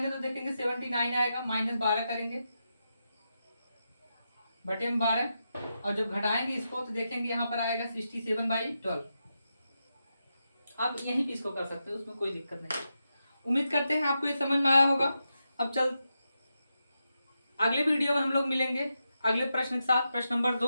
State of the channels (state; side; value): inverted; both; correlation -0.87